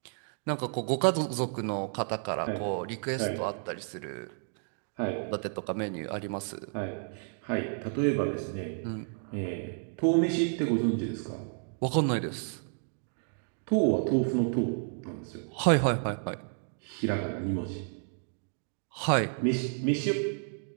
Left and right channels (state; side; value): silent; left; 57 dB below the other